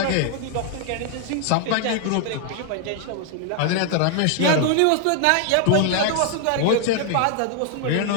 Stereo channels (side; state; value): both; different; correlation 0.00